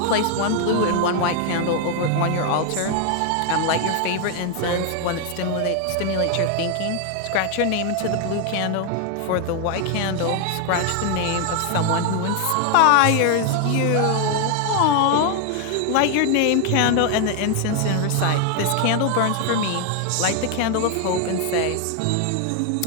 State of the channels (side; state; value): both; different; correlation 0.01